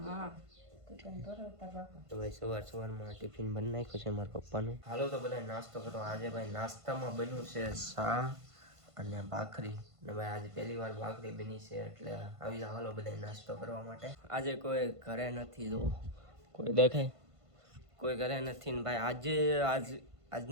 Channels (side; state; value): left; late; 1.5 ms